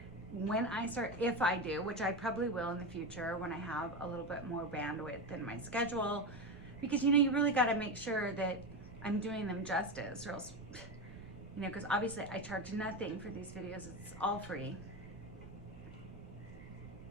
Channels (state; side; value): noise; right; rumble, 16 dB below the sound